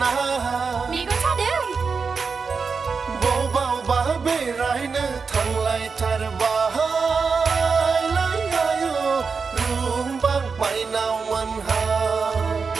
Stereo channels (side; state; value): left; quieter; 5.1 dB